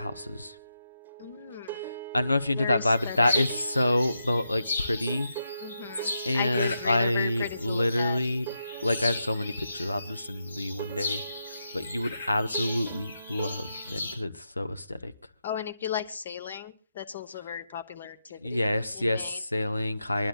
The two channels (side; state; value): both; inverted; correlation -0.85